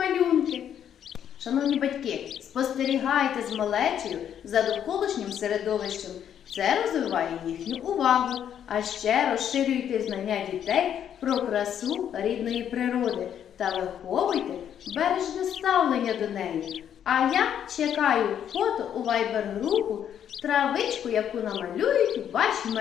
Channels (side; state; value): right; quieter; 9.4 dB